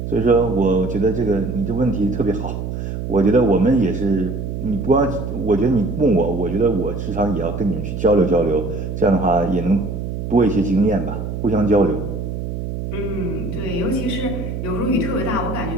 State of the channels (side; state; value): right; noise; hum, 5 dB below the sound